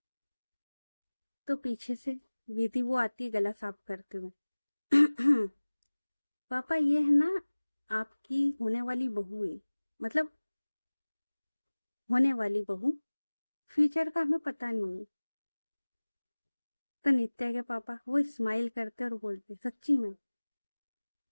तो पीछे से विधि वो आती है गला साफ करते हुए पापा ये है ना आपकी होने वाली बहू है, मतलब होने वाली बहू, फ्यूचर का हमें पता नहीं है। तो नित्या के पापा वो स्माइल करते और बोलते सच्ची में।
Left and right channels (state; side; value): inverted; both; correlation -1.00